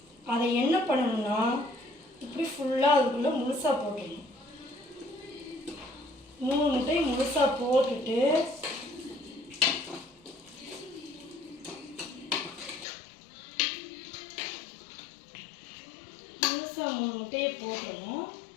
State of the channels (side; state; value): right; drops out; at 12.9 s